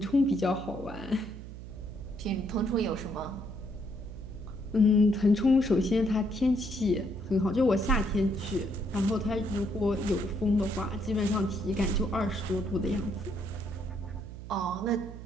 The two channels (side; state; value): right; noise; hum, 12 dB below the sound